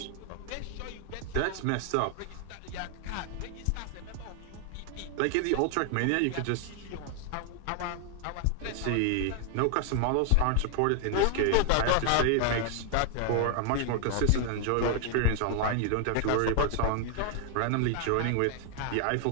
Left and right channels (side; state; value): both; different; correlation 0.00